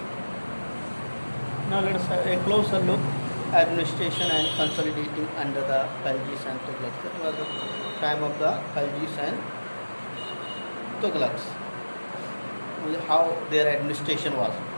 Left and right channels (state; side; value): inverted; both; correlation -1.00